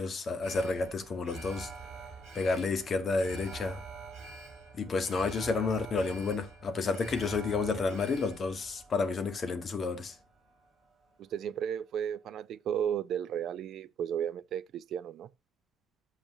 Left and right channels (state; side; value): normal; both; correlation 0.70